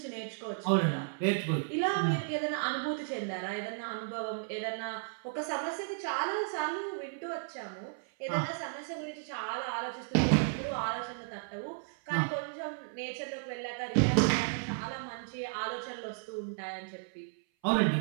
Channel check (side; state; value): left; silent; 55 dB below the other